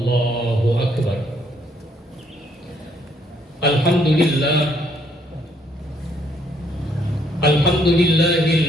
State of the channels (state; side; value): normal; both; correlation 0.69